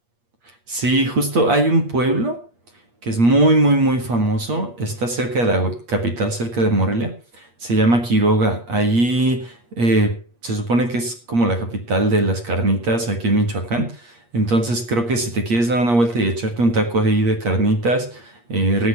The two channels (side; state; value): left; late; 8.5 ms